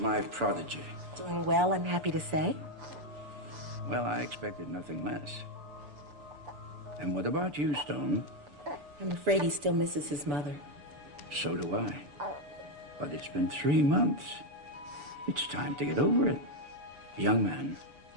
prodigy. Doing well, I'm happy to say. Well, I expected nothing less. And what about you, Stone? I'm afraid he still misses his mother. So do I. But it's been 3 months. It's time to get over it. Young man,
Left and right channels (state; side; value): late; left; 6.9 ms